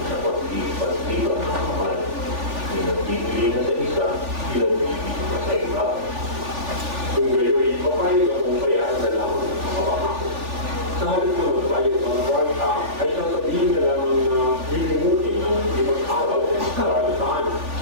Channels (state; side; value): late; left; 3.4 ms